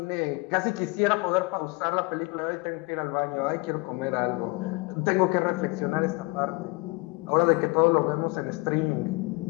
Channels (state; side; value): quieter; right; 26.0 dB